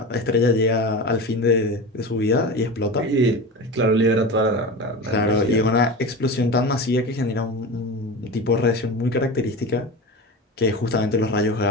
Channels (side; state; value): both; normal; correlation 0.28